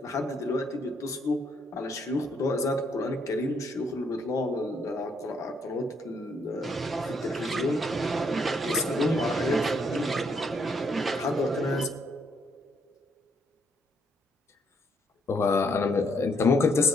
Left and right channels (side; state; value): both; normal; correlation 0.72